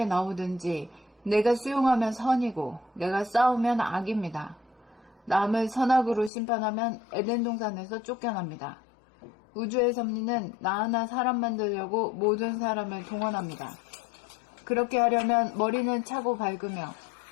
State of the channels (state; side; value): drops out; right; at 6.3 s